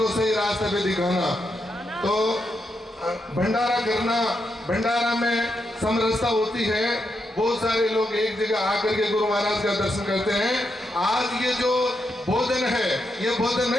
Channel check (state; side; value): normal; both; correlation 0.83